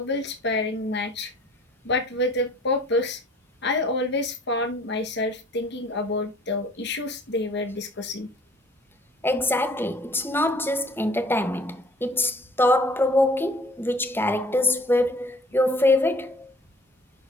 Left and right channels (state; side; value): normal; both; correlation 0.53